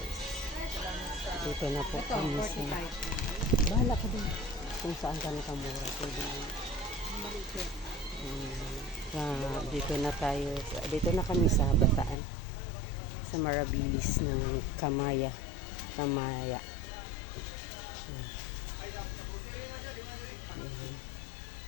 Dito na po kami sa... Bahala ka din. Kung saan ka nakamura. Pwede na. Dito na tayo. Dito na kami sa Bataan. Sa Marabilis ng Kamaya. Kamaya.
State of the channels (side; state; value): right; drops out; at 12.2 s